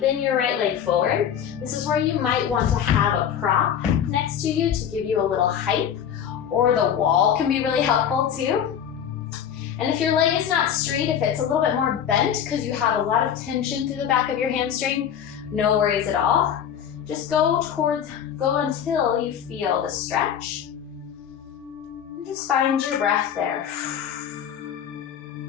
your right leg forward. This is where you might want to have a prop next to you to give you a little height, or the wall can be really helpful too. And if your leg is not straight, if it's a little bit more bent because you have a lot of tension through the back of your hamstring, no worries at all. Just go until you feel the stretch. And just find your breath there.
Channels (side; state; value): right; quieter; 8.9 dB